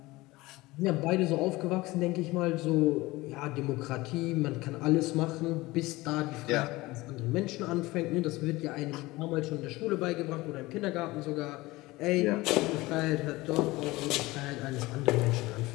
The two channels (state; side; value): quieter; right; 20.3 dB